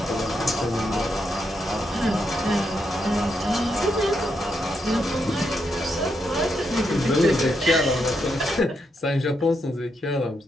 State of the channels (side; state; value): both; normal; correlation 0.81